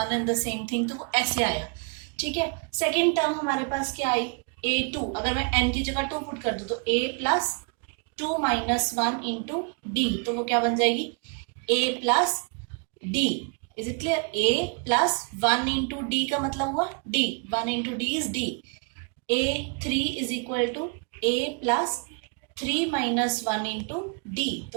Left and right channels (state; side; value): quieter; left; 35.8 dB